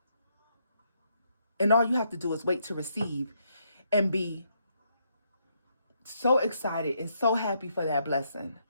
And all you have to do is wait to receive and be so excited and so happy for that blessing.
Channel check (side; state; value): both; inverted; correlation -0.76